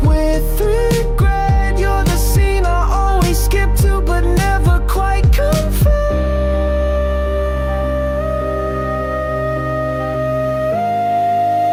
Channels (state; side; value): identical; both; correlation 1.00